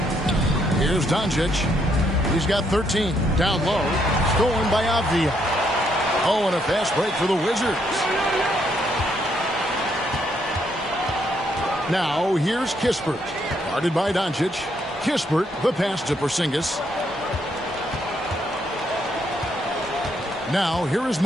Here's Doncic. He's got 13. Down low. Stolen by Avdia. Oh, and a fast break for the Wizards. Now, here's Kispert. Guarded by Doncic. Kispert, the pass to Porzingis. Now, here is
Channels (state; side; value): normal; both; correlation 0.74